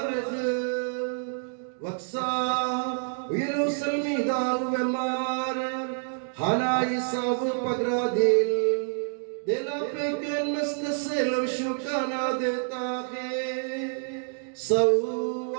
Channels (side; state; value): left; silent; digital silence